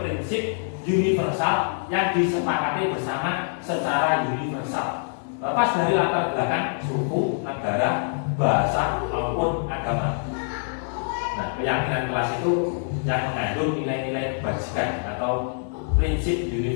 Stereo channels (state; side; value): silent; right; digital silence